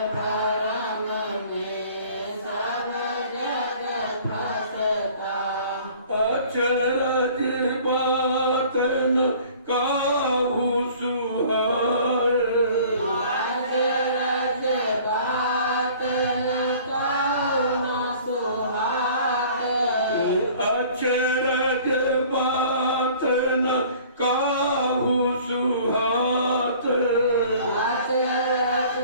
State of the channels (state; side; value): inverted; both; correlation -0.50